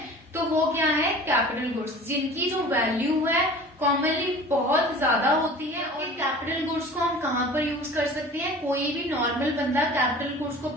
तो वो क्या है, कैपिटल गुड्स, जिनकी जो वैल्यू है कॉमनली बहुत ज्यादा होती है। और कैपिटल गुड्स को हम कहाँ पर यूज कर सकते हैं, कोई भी नॉर्मल बंदा कैपिटल गुड्स को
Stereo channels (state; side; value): normal; both; correlation 0.42